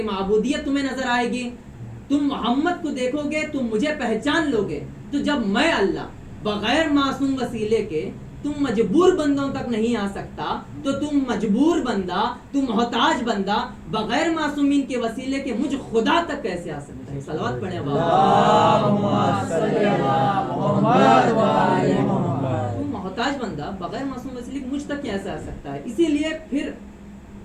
معبودیت تمہیں نظر آئے گی. تم محمد کو دیکھو گے تم مجھے پہچان لو گے. تو جب میں اللہ بغیر معصوم وسیلے کے تم مجبور بندوں تک نہیں آ سکتا تو تم مجبور بندہ، تم محتاج بندہ بغیر معصومین کے وسیلے کے مجھ خدا تک کیسے آ سکتا ہے؟ صلوات پڑھیں تم محتاج بندہ بغیر معصوم وسیلے کے مجھ تک کیسے آ سکتا ہے؟ اسی لیے پھر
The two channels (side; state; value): both; identical; correlation 1.00